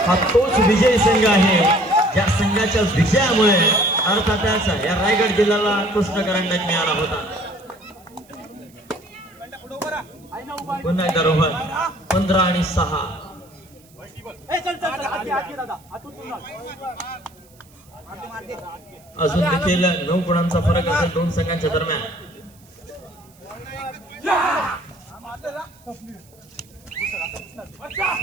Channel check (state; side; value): noise; right; hiss, 29 dB below the sound